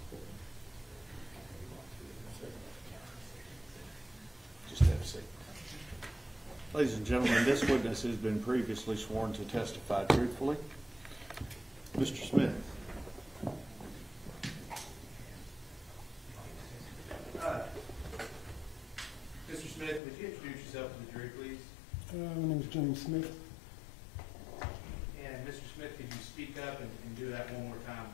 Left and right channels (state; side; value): drops out; right; at 20.0 s